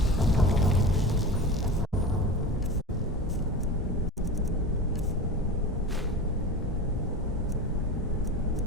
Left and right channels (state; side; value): normal; both; correlation 0.30